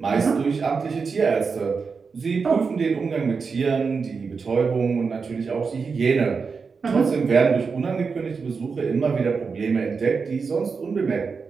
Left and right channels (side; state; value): left; quieter; 5.2 dB